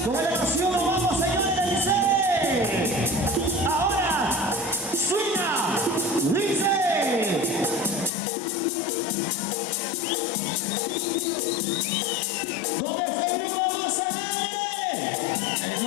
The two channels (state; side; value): drops out; right; at 8.1 s